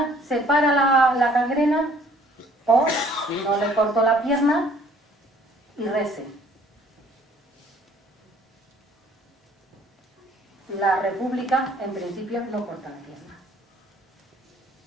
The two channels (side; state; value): both; normal; correlation 0.58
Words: se para la gangrena, o no le corto la pierna y rece. La República, en principio, no corta la pierna.